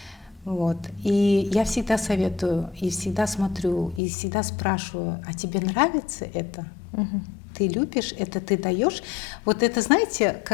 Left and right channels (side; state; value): right; drops out; at 4.0 s